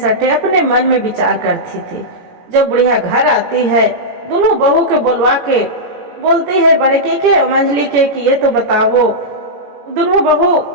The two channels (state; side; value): late; left; 17 ms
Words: अपने मन में विचार करती थी। जब बुढ़िया घर आती है, दोनों बहू के बुलवा के बोलती है बड़े के मंझली के कि ये तो बताओ दोनों बहू,